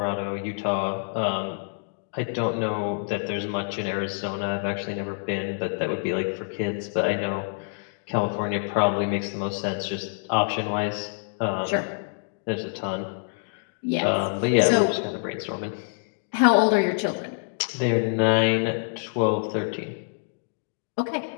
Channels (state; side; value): silent; right; digital silence